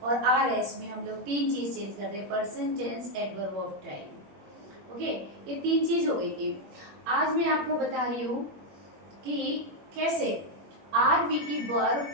और आर एस में हम लोग 3 चीज चेंज करते हैं, person, tense, adverb of time. Okay, ये 3 चीज हो गई थी। आज मैं आपको बता रही हूँ कि कैसे आर वी की वर्ब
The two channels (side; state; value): left; late; 21 ms